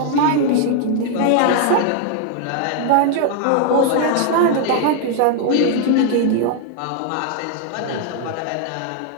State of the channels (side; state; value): both; different; correlation 0.00